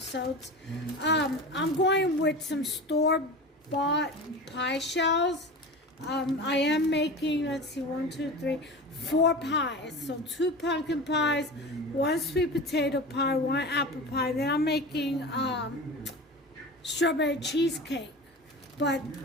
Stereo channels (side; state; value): both; normal; correlation 0.31